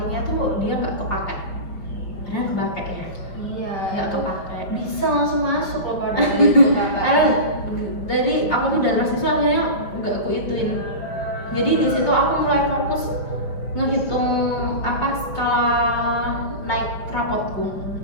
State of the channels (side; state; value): right; late; 5.5 ms